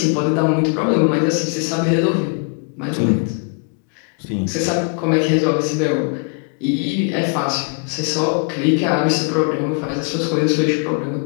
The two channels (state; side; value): quieter; right; 38.8 dB